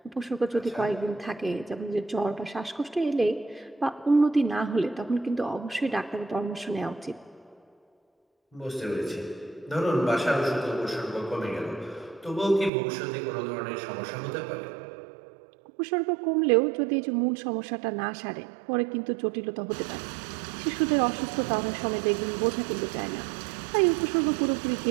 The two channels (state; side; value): drops out; left; at 12.7 s